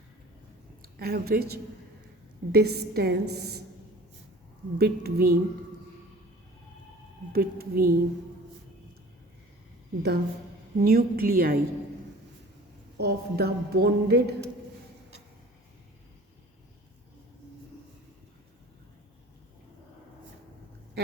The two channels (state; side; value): normal; both; correlation 0.45